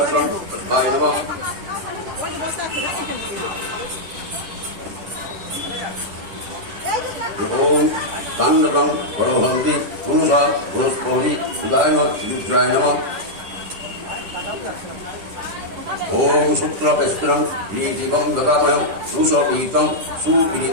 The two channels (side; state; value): left; late; 10 ms